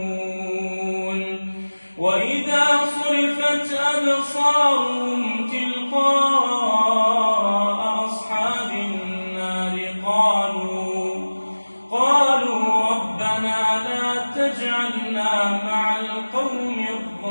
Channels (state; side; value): inverted; both; correlation -1.00